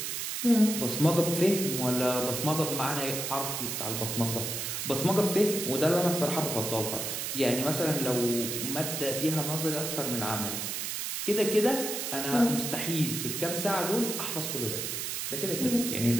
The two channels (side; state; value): right; noise; hiss, 3 dB below the sound